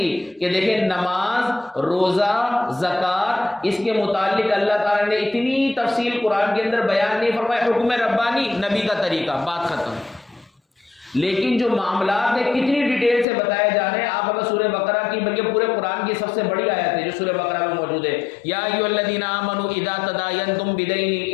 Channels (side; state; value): right; drops out; at 13.2 s